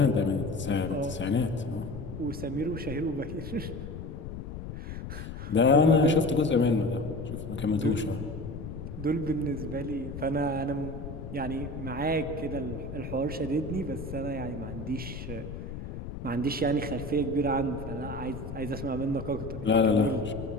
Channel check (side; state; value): left; noise; rumble, 8 dB below the sound